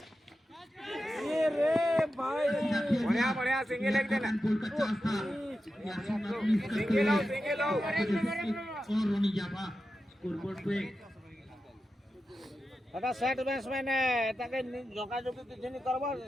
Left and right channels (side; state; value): both; normal; correlation 0.91